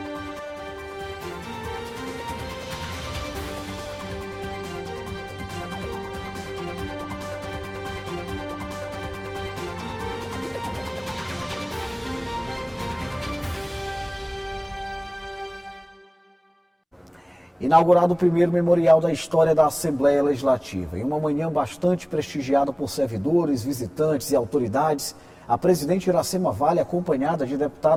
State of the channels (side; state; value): both; identical; correlation 1.00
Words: Inaugurado o primeiro memorial da história da Assembleia Legislativa. Em uma manhã bastante prestigiada por servidores, visitantes e autoridades, a presidente Iracema Vale, acompanhada de